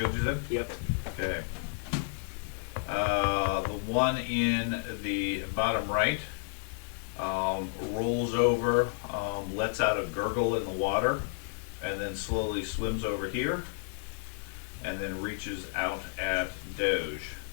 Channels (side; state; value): right; silent; 57 dB below the other